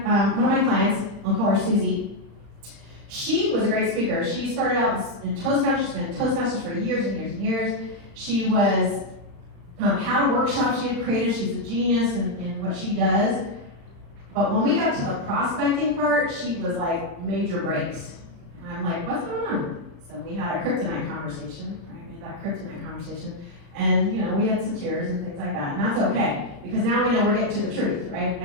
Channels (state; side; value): late; left; 35 ms